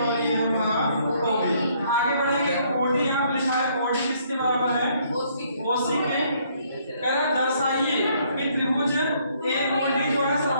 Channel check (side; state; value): both; inverted; correlation -0.66